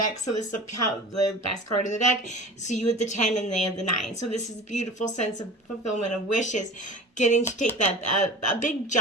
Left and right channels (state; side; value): normal; both; correlation 0.37